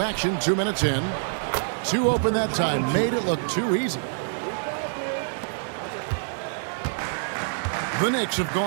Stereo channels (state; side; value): silent; left; digital silence